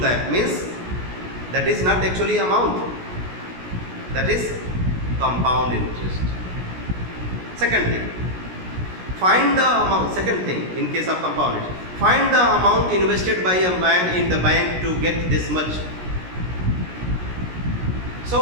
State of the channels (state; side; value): late; left; 17 ms